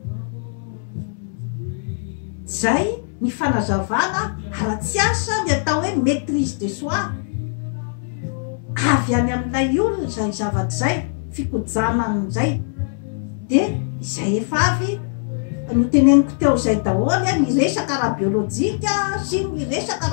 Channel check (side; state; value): right; silent; 65 dB below the other